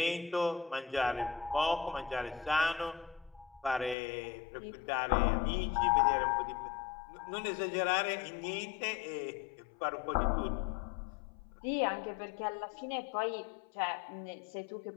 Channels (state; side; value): drops out; right; at 4.0 s